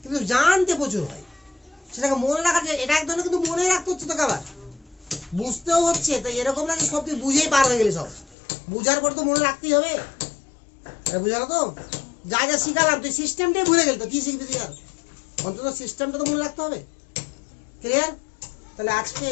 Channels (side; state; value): right; drops out; at 8.3 s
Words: কিন্তু জানতে প্রচুর হয়, সেটাকে মনে রাখা যায়। এটা এক ধরনের কিন্তু মনে রাখতে হচ্ছে তোকে, আবার বুঝতেও হচ্ছে। তাই এরকম না যে সব তুই বুঝেই পার হয়ে গেলি, সব বুঝার পর তো মনে রাখতেই হবে। বুঝালো তো? যা যা শিখালাম তুই সিস্টেমটাই ভুলে গেলি, তো কি শিখবি তুই? আর অন্তত সিস্টেমটা তো মনে রাখতে হবে। ক্লিয়ার? তাহলে আজকে